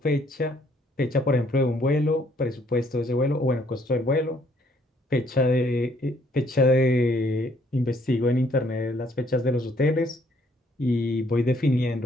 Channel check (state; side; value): normal; both; correlation 0.65